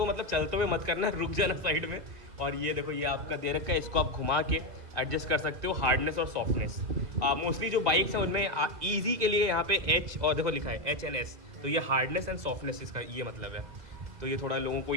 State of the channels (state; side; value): late; left; 2.2 ms